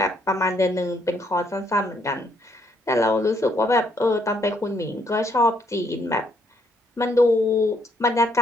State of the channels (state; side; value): normal; both; correlation 0.70